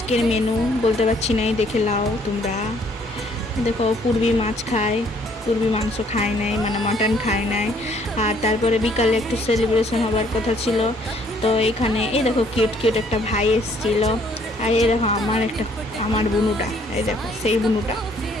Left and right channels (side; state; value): both; normal; correlation 0.63